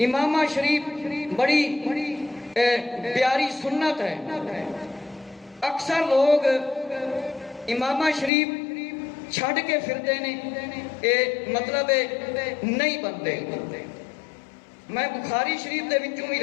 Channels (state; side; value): drops out; right; at 8.3 s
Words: امامہ شریف بڑی پیاری سنت ہے. اکثر لوگ امامہ شریف چھڑ کے پھرتے نے، مطلب نہیں بنتے. میں بخاری شریف دے وچوں بھی